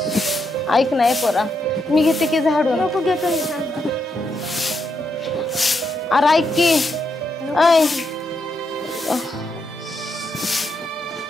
ऐक नाही पोरा, मी घेते की झाडून. नको घेतो मी, थांब. अरे ऐक की. ऐ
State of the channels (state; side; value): normal; both; correlation 0.81